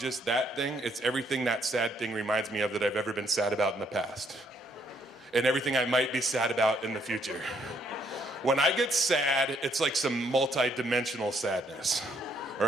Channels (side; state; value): both; normal; correlation 0.70